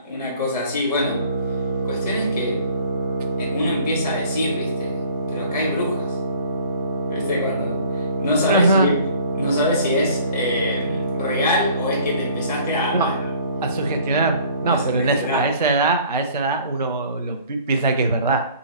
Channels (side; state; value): both; inverted; correlation -0.53